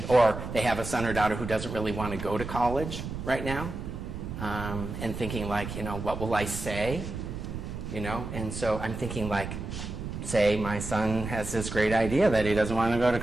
they have a son or daughter who doesn't really want to go to college right now, and thinking what will I say? And so I'm thinking say my son has this great idea that he doesn't want to go to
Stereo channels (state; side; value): noise; right; rumble, 7 dB below the sound